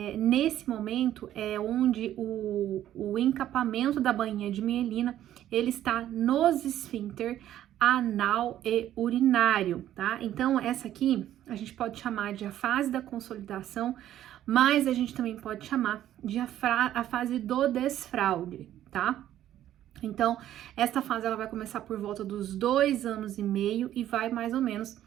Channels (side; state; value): left; quieter; 12.1 dB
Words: nesse momento é onde o encapamento da bainha de mielina ele está nos esfíncter anal e urinário, tá? Então essa aqui a gente pode chamar de a fase da consolidação, mas a gente também pode chamar de a fase do desfraude, tá? Então essa fase ela vai começar por volta dos 2 anos e meio e vai mais ou menos